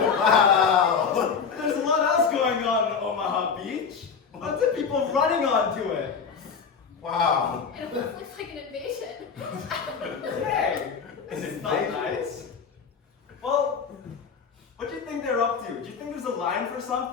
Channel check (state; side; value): quieter; right; 6.1 dB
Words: There's a lot else going on in Omaha Beach. Lots of people running onto it. Wow! It almost looks like an invasion. Hey, is it not nice? Well, what do you think they're up to? Do you think there's a line for